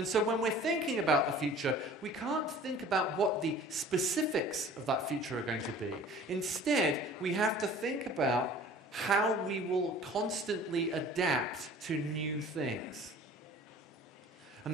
so when we're thinking about the future, we can't think about what the specifics of that future are going to be. Instead, we have to think about how we will constantly adapt to new things.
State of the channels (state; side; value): normal; both; correlation 0.46